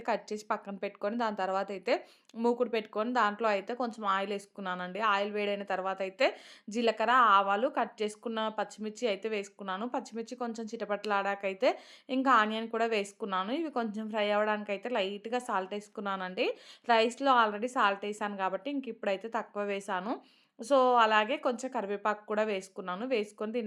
కట్ చేసి పక్కన పెట్టుకొని దాని తర్వాతయితే మూకుడు పెట్టుకొని దాంట్లో అయితే కొంచెం ఆయిలేసుకున్నానండి. ఆయిల్ వేడైన తర్వాతయితే జీలకర్ర, ఆవాలు, కట్ చేసుకున్న పచ్చిమిర్చి అయితే వేసుకున్నాను. పచ్చిమిర్చి కొంచెం చిటపటలాడాకైతే ఇంకా ఆనియన్ కూడా వేసుకున్నాను. ఇవి కొంచెం ఫ్రై అవ్వడానికైతే లైట్‌గా సాల్ట్ ఏసుకున్నానండి. రైస్‌లో ఆల్రెడీ సాల్ట్ ఏసాను కాబట్టి ఇంక ఇప్పుడైతే తక్కువ వేశాను. సో, అలాగే కొంచెం కరివేపాకు కూడా వేసుకున్నాను. వేసుకొని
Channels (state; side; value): identical; both; correlation 1.00